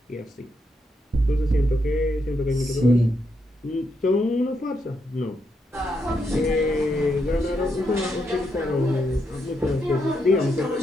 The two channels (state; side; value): normal; both; correlation 0.80